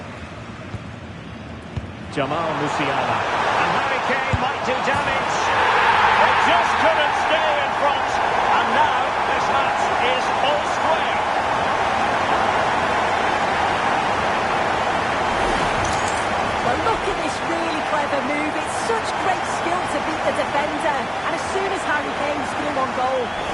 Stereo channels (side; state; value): both; identical; correlation 1.00